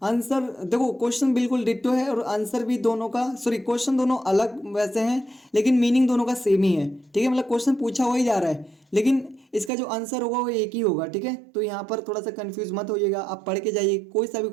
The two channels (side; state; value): left; drops out; at 9.7 s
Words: आंसर देखो क्वेश्चन बिल्कुल डिट्टो है और आंसर भी दोनों का, सॉरी क्वेश्चन दोनों अलग वैसे हैं लेकिन मीनिंग दोनों का सेम ही है, ठीक है। मतलब क्वेश्चन पूछा हो ही जा रहा है लेकिन इसका जो आंसर होगा वो एक ही होगा, ठीक है। तो यहाँ पर थोड़ा सा कंफ्यूज मत होइएगा, आप पढ़ के जाइए, कोई सा भी